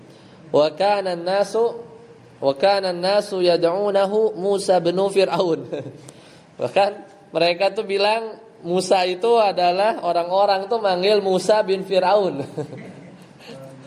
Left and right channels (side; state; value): both; identical; correlation 1.00